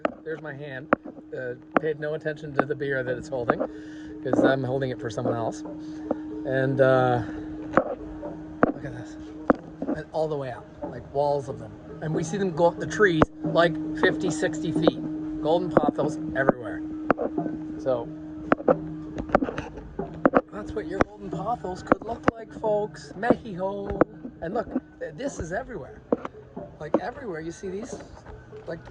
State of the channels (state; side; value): identical; both; correlation 1.00